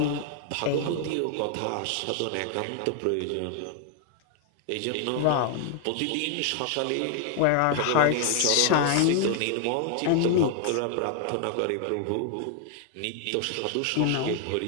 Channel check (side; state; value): both; different; correlation 0.00